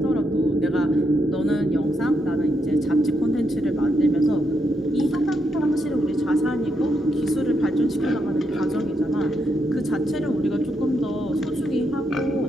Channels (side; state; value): both; normal; correlation 0.80